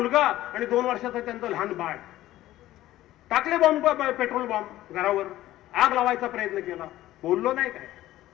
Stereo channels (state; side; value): quieter; right; 15.0 dB